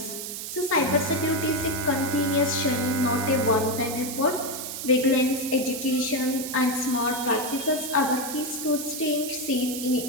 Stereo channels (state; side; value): noise; right; hiss, 7 dB below the sound